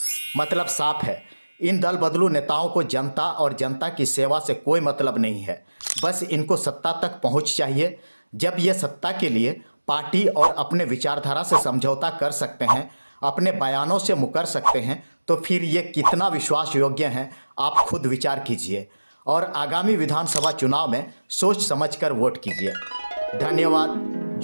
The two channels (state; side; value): inverted; both; correlation -1.00